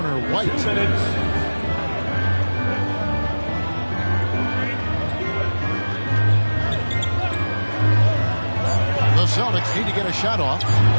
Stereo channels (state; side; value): inverted; both; correlation -1.00